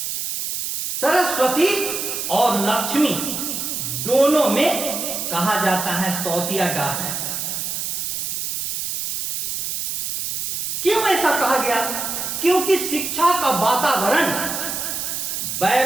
सरस्वती और लक्ष्मी दोनों में कहा जाता है सौतिया डाल है। क्यों ऐसा कहा गया? क्योंकि शिक्षा का वातावरण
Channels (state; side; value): noise; right; hiss, 3 dB below the sound